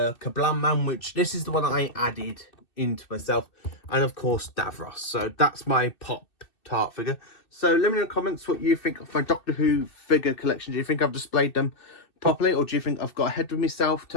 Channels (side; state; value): right; late; 2.6 ms